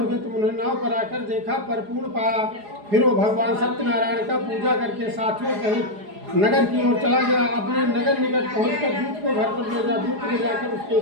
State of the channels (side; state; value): left; late; 4.8 ms